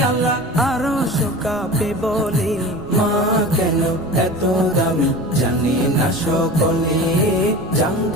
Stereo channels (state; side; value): noise; right; rumble, 19 dB below the sound